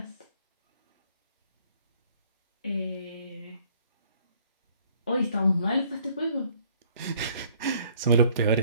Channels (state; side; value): inverted; both; correlation -0.60